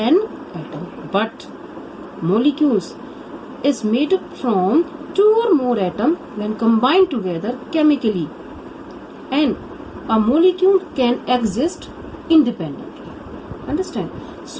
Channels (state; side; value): identical; both; correlation 1.00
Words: atom. But molecules is made from 2 or more atoms when combined together chemically, and a molecule can exist independently. Understand?